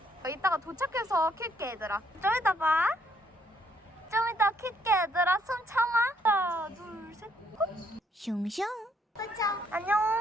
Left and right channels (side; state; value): both; normal; correlation 0.70